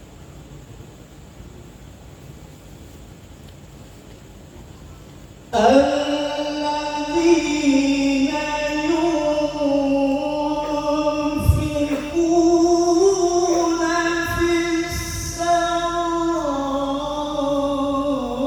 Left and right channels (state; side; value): identical; both; correlation 1.00